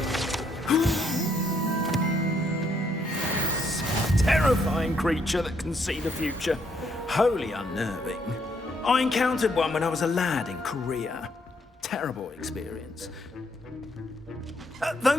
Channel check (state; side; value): normal; both; correlation 0.72